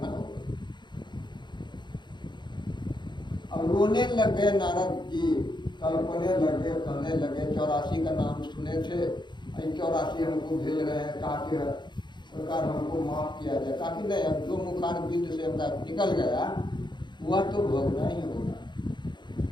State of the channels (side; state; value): right; late; 0.22 ms